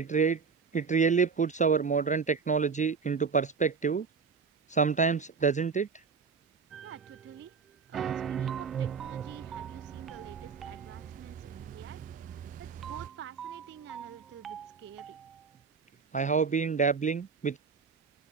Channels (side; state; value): left; quieter; 5.4 dB